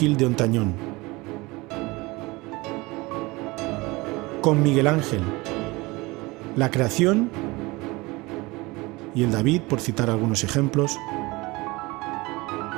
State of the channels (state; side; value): quieter; left; 22.9 dB